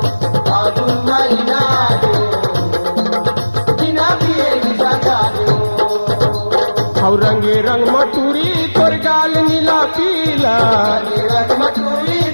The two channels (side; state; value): both; inverted; correlation -1.00